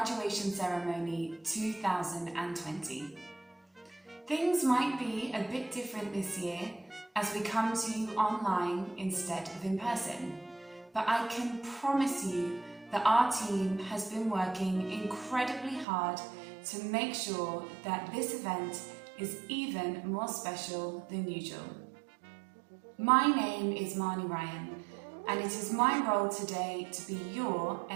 Ceremony 2020. Things might be a bit different this year as we come to you online instead of in person, but I can promise you that our team has been working incredibly hard to make sure that this event is even more special than usual. My name is Marnie Ryan, and it is my role today to be your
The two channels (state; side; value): drops out; left; at 15.9 s